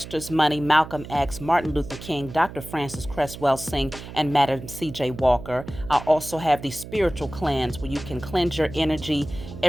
Money, Malcolm X, Martin Luther King, Dr. Francis Cresswell Singh, and Madam C.J. Walker. I also have the Spiritual Cleanse, where you can cleanse your energy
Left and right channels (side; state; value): right; noise; hum, 13 dB below the sound